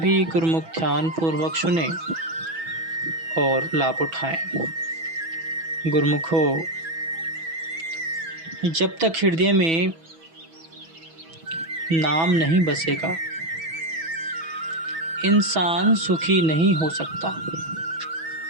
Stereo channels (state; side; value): late; left; 6.1 ms